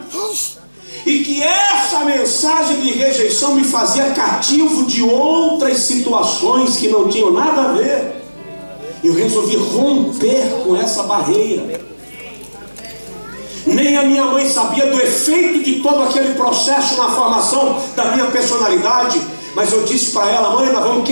e que essa mensagem de rejeição me fazia cativo de outras situações que não tinham nada a ver. Eu resolvi romper com essa barreira. Nem a minha mãe sabia do efeito de todo aquele processo na formação da minha personalidade, mas eu disse para ela: mãe, nós vamos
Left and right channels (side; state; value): both; inverted; correlation -1.00